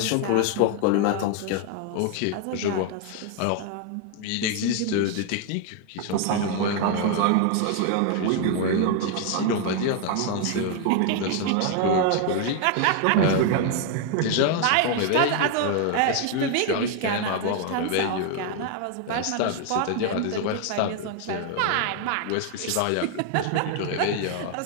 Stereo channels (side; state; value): both; different; correlation 0.00